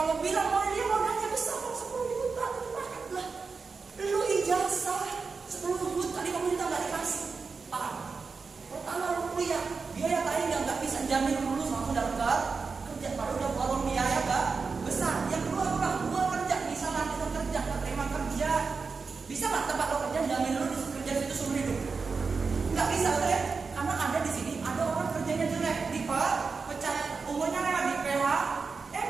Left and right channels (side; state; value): left; quieter; 4.8 dB